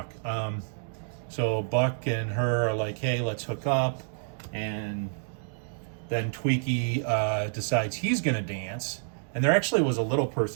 So Buck and her are like, hey, let's hook up, and then Tweaky decides he's gonna dance, and there actually was a little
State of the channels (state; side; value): silent; left; digital silence